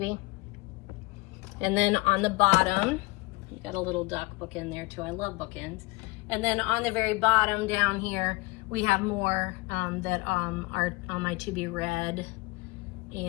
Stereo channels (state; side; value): quieter; right; 23.7 dB